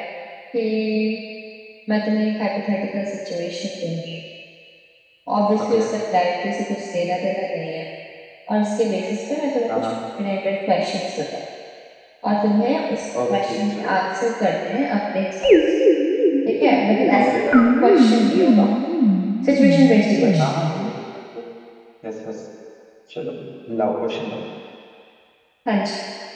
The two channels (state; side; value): identical; both; correlation 1.00